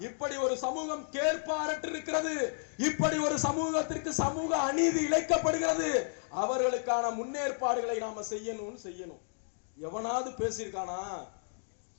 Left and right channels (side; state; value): right; silent; digital silence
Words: இப்படி ஒரு சமூகம் கேட்பாரற்று இருக்கிறது, இப்படி ஒரு சமூகத்திற்கு சமூக அநீதி இழைக்கப்படுகிறது, அவர்களுக்கான முன்னேற்பாடுகளை நாம செய்யணும். எவனாவது பேசியிருக்கானா?